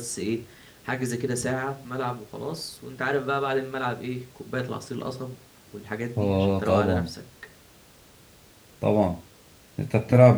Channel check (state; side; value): identical; both; correlation 1.00